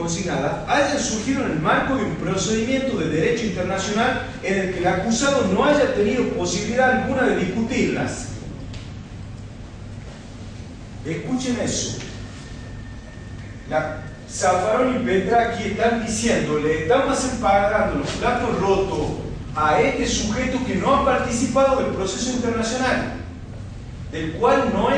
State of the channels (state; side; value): identical; both; correlation 1.00